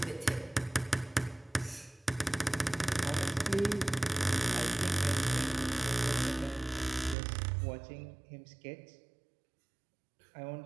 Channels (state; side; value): drops out; left; at 7.2 s